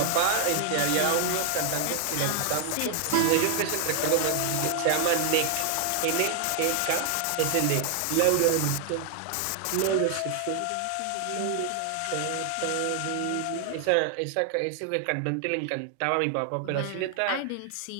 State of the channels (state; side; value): different; both; correlation 0.00